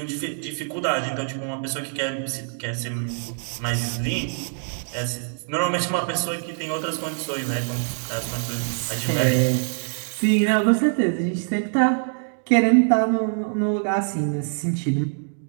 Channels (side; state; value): left; silent; 60 dB below the other